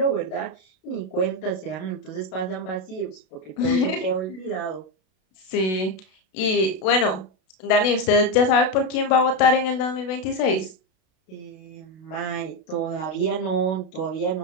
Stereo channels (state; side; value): late; right; 32 ms